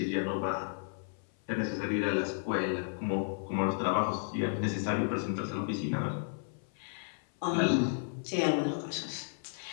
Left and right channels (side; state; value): right; silent; 56 dB below the other